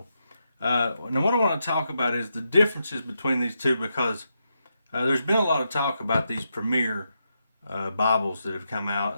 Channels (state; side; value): inverted; both; correlation -0.84